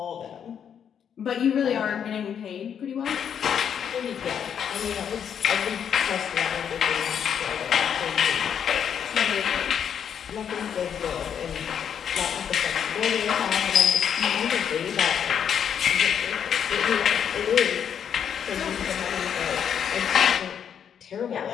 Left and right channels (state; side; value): quieter; right; 8.2 dB